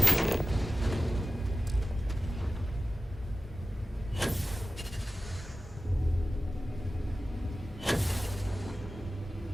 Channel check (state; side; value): normal; both; correlation 0.95